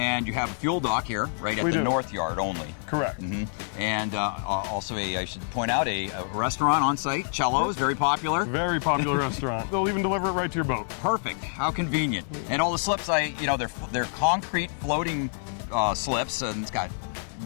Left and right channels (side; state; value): right; silent; digital silence